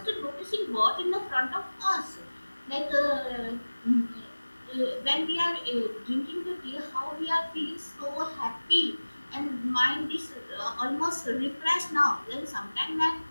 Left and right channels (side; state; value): both; inverted; correlation -1.00